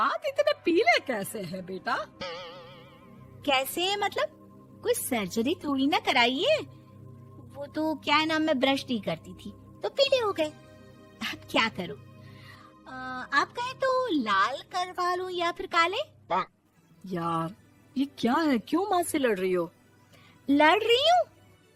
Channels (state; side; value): identical; both; correlation 1.00